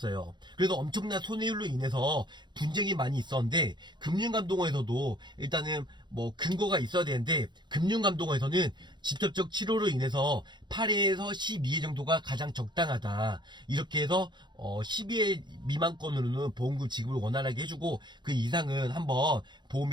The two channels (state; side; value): late; left; 0.22 ms